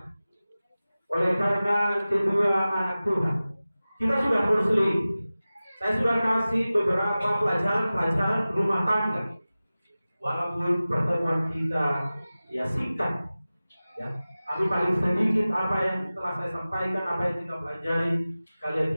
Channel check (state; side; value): inverted; both; correlation -0.97